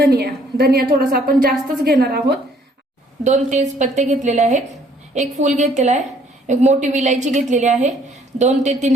थोडासा आपण जास्तच घेणार आहोत। 2 तेजपत्ते घेतलेले आहेत, 1 फूल घेतलेला आहे, 1 मोठी विलायची घेतलेली आहे, 2 ते 3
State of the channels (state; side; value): normal; both; correlation 0.62